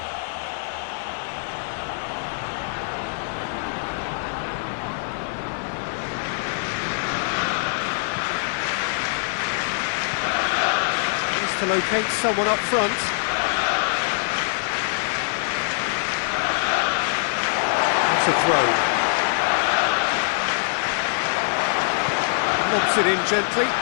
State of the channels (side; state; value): right; silent; digital silence